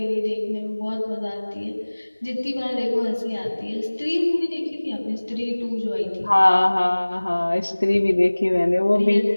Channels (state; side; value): inverted; both; correlation -1.00